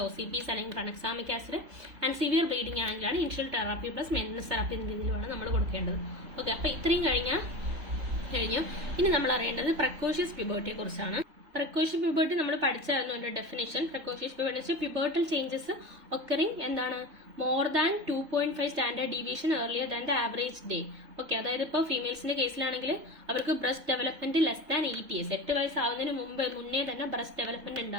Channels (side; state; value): left; late; 3.3 ms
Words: OCPs അല്ലെങ്കിൽ tranexamic acid, and severe bleeding ആണെങ്കിലാണ് initial therapy plus maintenance therapy എന്ന രീതിയിലാണ് നമ്മൾ കൊടുക്കേണ്ടത്. ഓക്കെ, അപ്പൊ ഇത്രയും കഴിഞ്ഞു. ഇനി നമ്മൾ അറിയേണ്ടത് പ്രക്കോഷ്യസ് പ്യൂബർട്ടിയെ കുറിച്ചാണ്. പ്രക്കോഷ്യസ് പ്യൂബർട്ടി നമ്മൾ പഠിച്ചായിരുന്നു അതിന്റെ definition. Precocious puberty pubertal changes occurring എന്താണ്? More than 2.5 standard deviation earlier than the average day. Okay, അതായത് ഇപ്പോൾ ഫീമെയിൽസിന്റെ കേസിലാണെങ്കിൽ അവർക്ക് breast development less than 8 years, 8 വയസ്സാവുന്നതിന് മുന്നേ തന്നെ ബ്രസ്റ്റ് ഡെവലപ്മെന്റ്